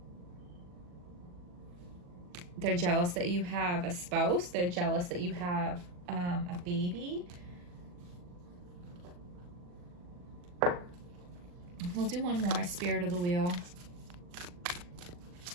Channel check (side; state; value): left; late; 40 ms